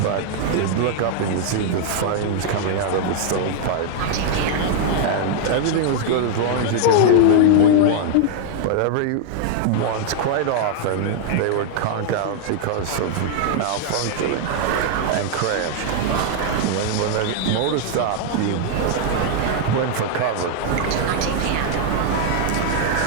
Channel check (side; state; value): both; different; correlation 0.00